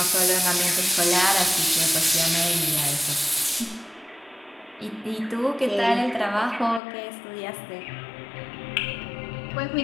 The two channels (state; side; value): drops out; right; at 6.8 s